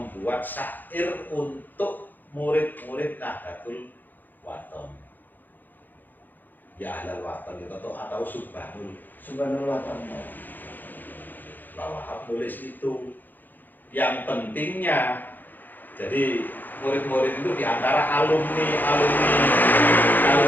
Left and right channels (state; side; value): late; right; 0.087 ms